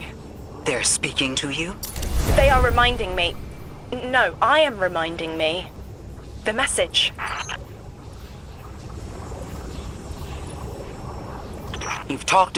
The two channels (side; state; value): both; identical; correlation 1.00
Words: They're speaking to you? They are reminding me... No, I am reminding me. The message. You've talked